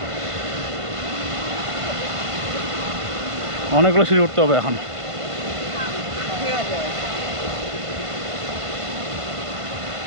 অনেকগুলো সিঁড়ি উঠতে হবে এখন।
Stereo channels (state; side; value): late; left; 1.5 ms